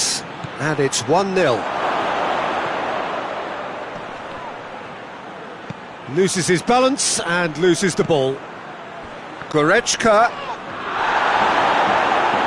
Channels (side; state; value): both; identical; correlation 1.00